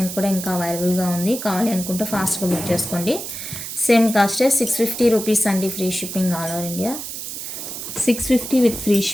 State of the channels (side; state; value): right; noise; hiss, 7 dB below the sound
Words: కూడా ఇంకా అవైలబుల్గా ఉంది. కావాలి అనుకుంటే ఫాస్ట్గా బుక్ చేసుకోండి. సేమ్ కాస్టే 650 రూపీస్ అండి free shipping all over India. 650 with free